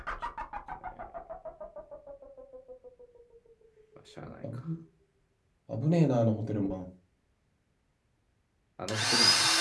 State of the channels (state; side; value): identical; both; correlation 1.00